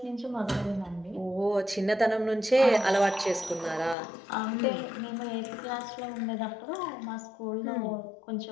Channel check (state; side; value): drops out; right; at 4.0 s